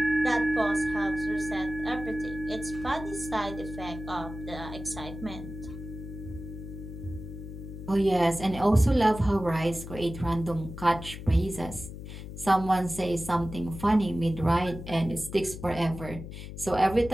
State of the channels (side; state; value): left; noise; hum, 11 dB below the sound